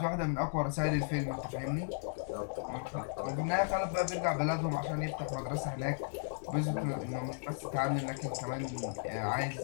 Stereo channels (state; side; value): silent; right; digital silence